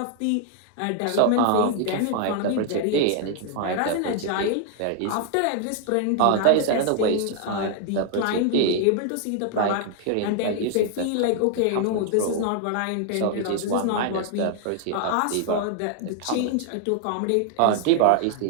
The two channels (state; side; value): different; both; correlation 0.00